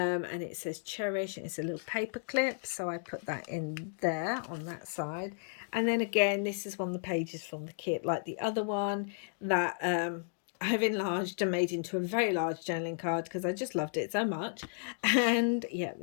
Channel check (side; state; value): right; silent; digital silence